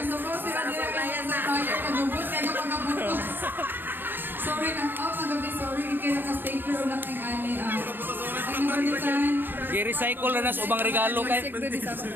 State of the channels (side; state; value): left; late; 0.094 ms